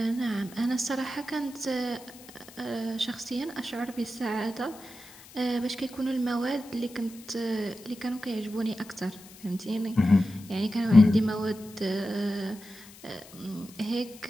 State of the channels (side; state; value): left; noise; hiss, 20 dB below the sound